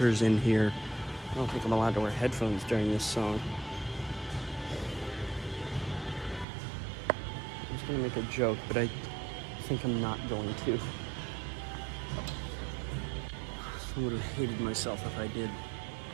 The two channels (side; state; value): left; drops out; at 6.5 s